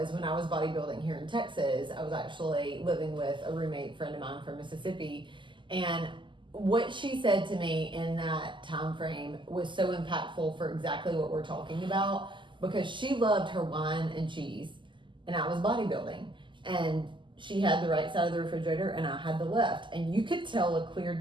when I was bodybuilding here in Texas, I was actually living with a roommate friend of mine from Mississippi, and what she said to me in that time frame was so impactful for exactly what we're talking about, because she loved her wine and cheese and I was bodybuilding, and she had the right side of the refrigerator and I had the left, and you could tell a clear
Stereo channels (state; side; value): late; left; 0.24 ms